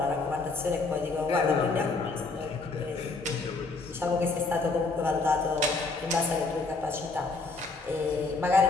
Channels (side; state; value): right; quieter; 3.7 dB